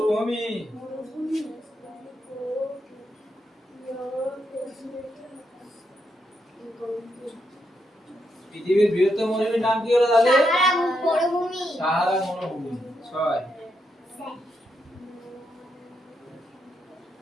পৃথিবীর বৃহত্তম মরুভূমির নাম কি হলো তাহলে? সাহারা মরুভূমি। 6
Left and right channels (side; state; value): both; normal; correlation 0.81